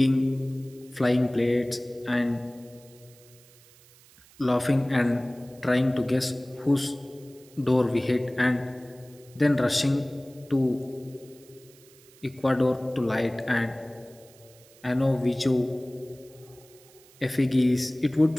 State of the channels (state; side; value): noise; right; hiss, 26 dB below the sound